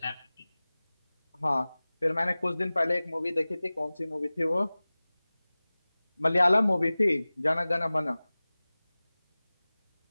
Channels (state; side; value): inverted; both; correlation -0.99